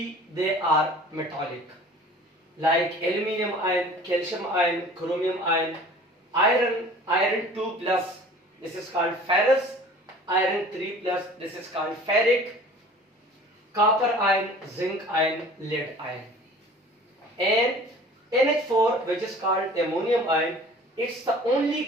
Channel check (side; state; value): both; normal; correlation 0.46